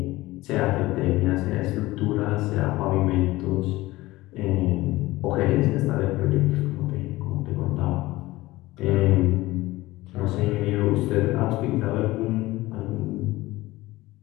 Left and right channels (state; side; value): quieter; right; 18.7 dB